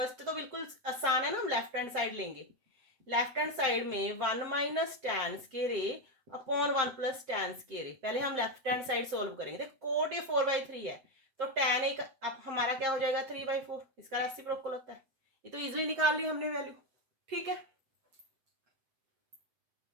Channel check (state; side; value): late; left; 8.0 ms